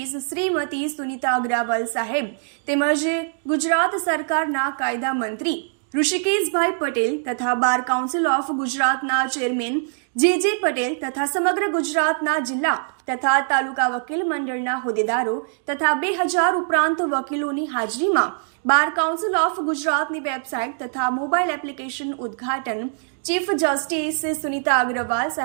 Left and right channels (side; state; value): left; silent; digital silence